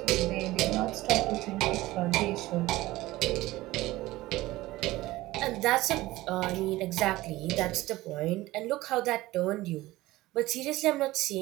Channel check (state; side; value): quieter; left; 17.9 dB